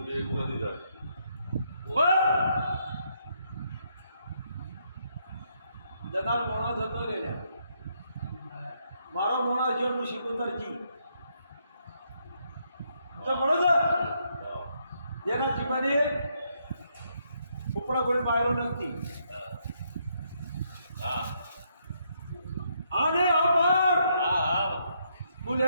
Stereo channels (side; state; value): both; inverted; correlation -0.75